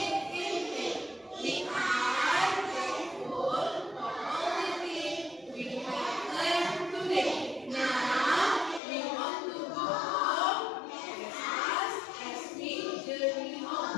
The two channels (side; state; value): right; drops out; at 8.8 s